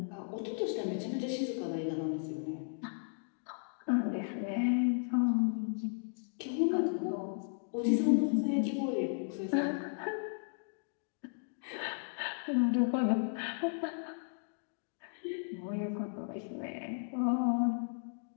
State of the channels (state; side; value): silent; right; digital silence